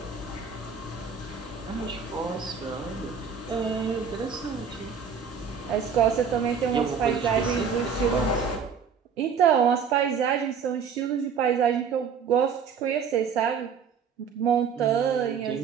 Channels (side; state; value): left; quieter; 6.5 dB